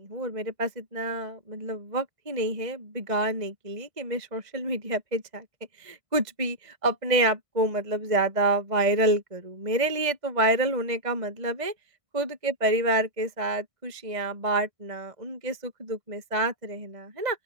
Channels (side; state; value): left; late; 1.6 ms